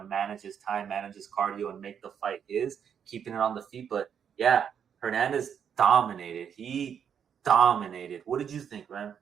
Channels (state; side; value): quieter; left; 7.9 dB